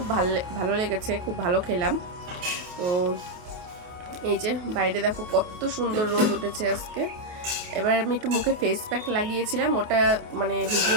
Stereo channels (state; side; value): late; left; 28 ms